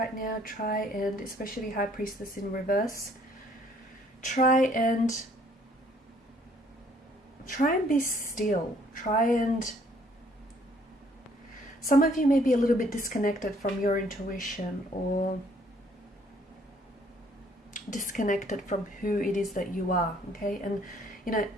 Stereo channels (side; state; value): both; normal; correlation 0.62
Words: now, try and, especially High Priestess in reverse, try and be still. Some of you may be a little bit disconnected from your intuition, or disconnected from who it is that you are, okay? And, you know,